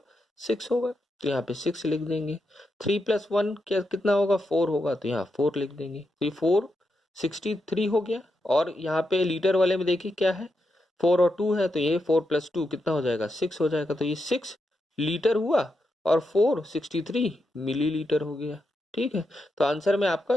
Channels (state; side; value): normal; both; correlation 0.85